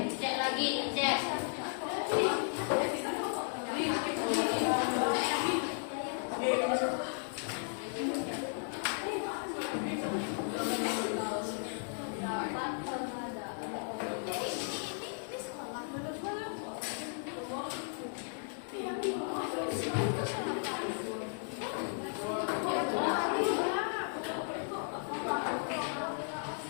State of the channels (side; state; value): right; silent; 54 dB below the other